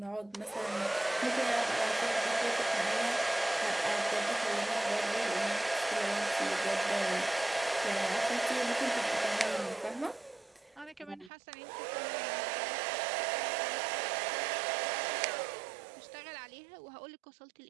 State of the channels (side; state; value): left; drops out; at 11.3 s